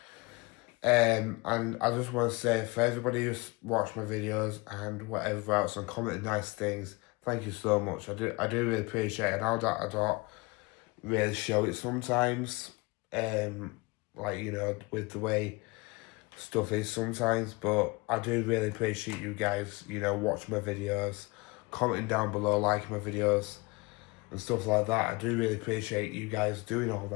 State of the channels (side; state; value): right; quieter; 25.8 dB